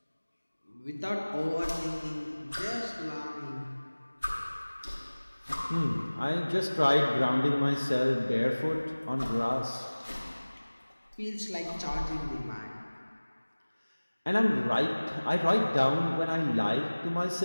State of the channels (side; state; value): both; inverted; correlation -1.00